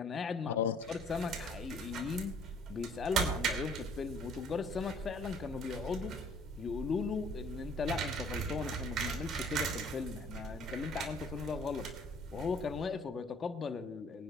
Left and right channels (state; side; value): normal; both; correlation 0.57